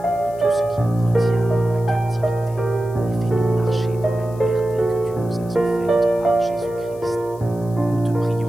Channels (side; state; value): left; noise; hiss, 26 dB below the sound